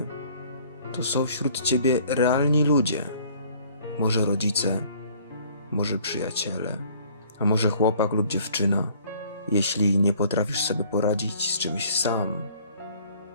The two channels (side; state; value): both; inverted; correlation -0.56